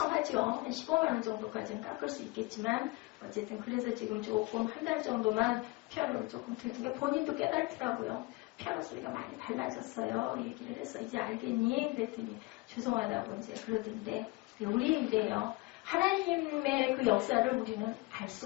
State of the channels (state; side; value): quieter; right; 23.2 dB